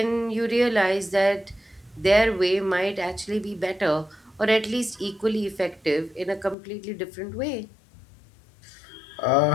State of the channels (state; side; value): drops out; right; at 6.6 s